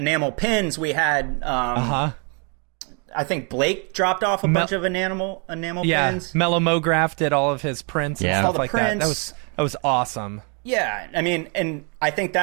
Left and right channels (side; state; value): left; quieter; 36.5 dB